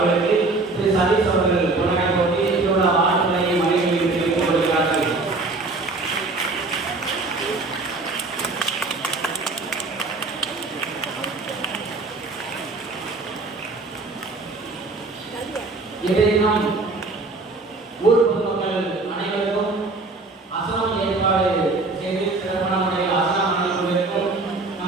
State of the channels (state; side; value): quieter; left; 3.4 dB